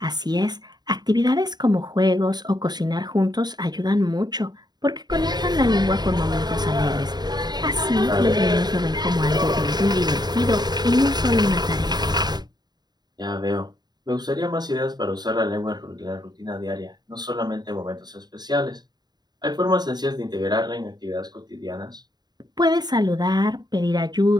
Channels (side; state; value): left; late; 0.20 ms